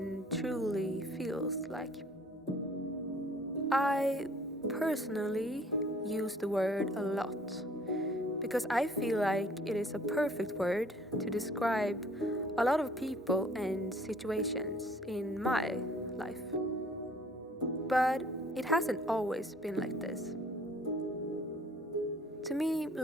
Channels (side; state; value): both; normal; correlation 0.56